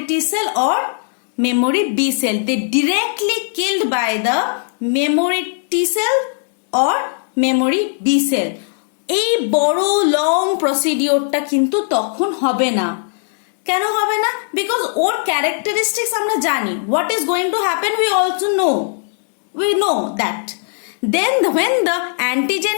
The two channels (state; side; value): silent; right; digital silence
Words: T cell or memory B cell. They directly killed by the memory T cell or memory B cell. এই বড় লং প্রসিডিওরটা কিন্তু তখন হবে না। কেন হবে না? বিকজ ওর ক্যারেক্টারিস্টিক্স আমরা জানি। What is going to happen we also know. We know that. Then when the antigen